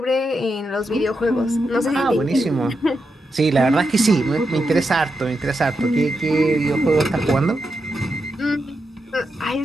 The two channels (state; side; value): normal; both; correlation 0.86